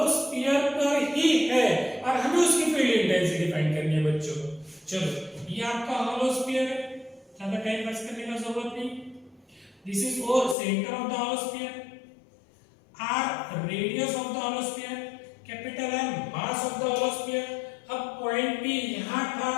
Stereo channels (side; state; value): right; drops out; at 10.6 s